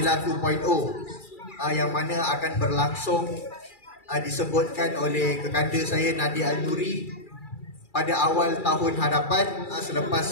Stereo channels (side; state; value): right; late; 2.3 ms